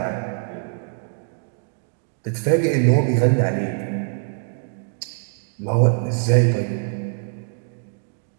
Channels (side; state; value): left; silent; 61 dB below the other